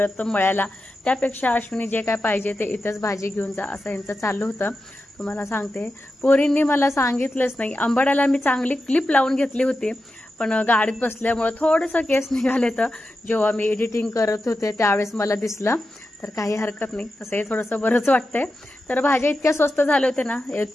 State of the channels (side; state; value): both; normal; correlation 0.90